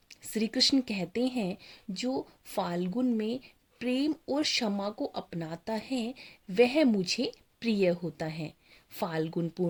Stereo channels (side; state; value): both; identical; correlation 1.00